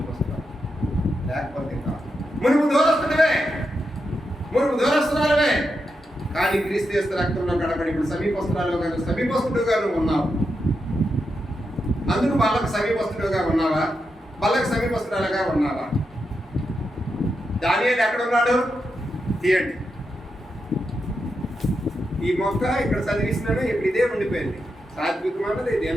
లేకపోతే కాదు. మునుపు దూరస్తున్నావే కానీ క్రీస్తు యేసు రక్తంలో కడబడి ఇప్పుడు సమీపస్తురాలుగా నువ్వు సమీపస్తుడుగా నువ్వు ఉన్నావు. అందుకు వాళ్ళకు సమీపస్తుడుగా ఉన్నావా? వాళ్ళకి సమీపస్తురాలుగా ఉన్నావా? దానియేలు ఎక్కడ ఉన్నాడు? తీయండి. ఈ మొక్క ఇక్కడ చదివిస్తున్నాడు, ఇప్పుడు ఇదే ఉండిపోయింది. సాత్వికం అన్నది,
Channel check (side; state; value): both; normal; correlation 0.86